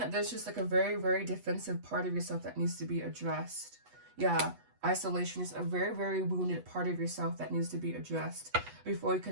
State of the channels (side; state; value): left; late; 8.2 ms